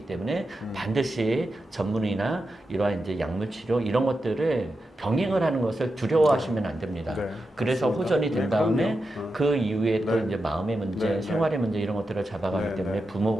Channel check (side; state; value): both; normal; correlation 0.89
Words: 때문에 반드시 전문의나 이러한 이제 약물 치료 이런 것들을 병행을 하는 것을 두려워하시면 안 됩니다. 그래서 호전이 된 다음에 그 이후에 또 이제 마음의 문제, 생활의 문제 이런 것들을 잘 잡아가기 네, 때문에 네.